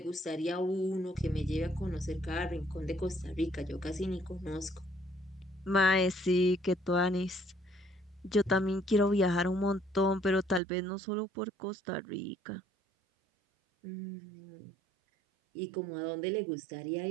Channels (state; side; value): drops out; left; at 10.6 s